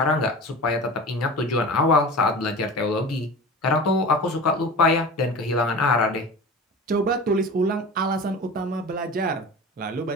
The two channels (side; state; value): both; normal; correlation 0.34